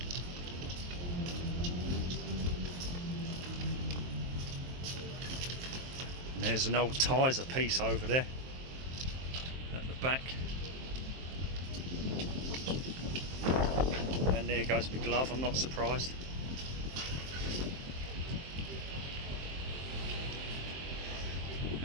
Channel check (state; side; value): late; left; 23 ms